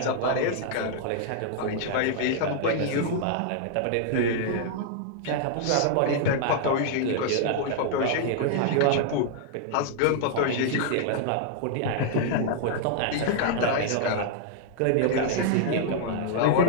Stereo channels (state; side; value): different; both; correlation -0.01